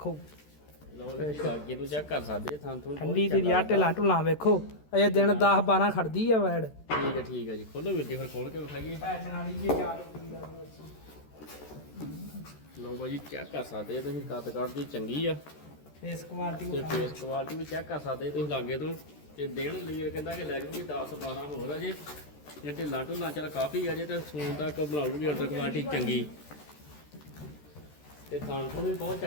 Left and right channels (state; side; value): late; right; 13 ms